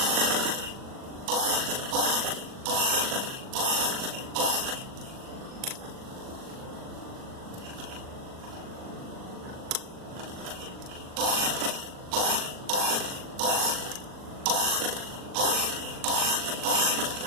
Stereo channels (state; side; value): late; left; 39 ms